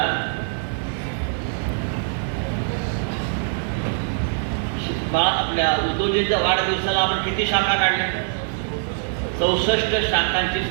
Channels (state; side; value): silent; left; digital silence